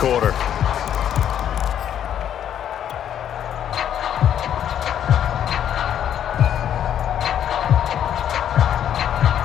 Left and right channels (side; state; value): right; quieter; 9.9 dB